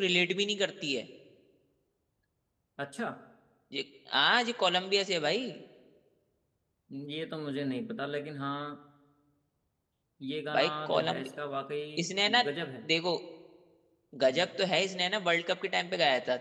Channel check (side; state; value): both; identical; correlation 1.00